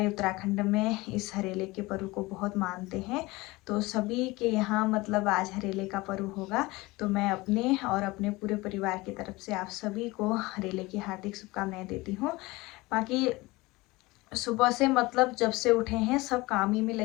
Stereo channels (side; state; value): right; quieter; 21.5 dB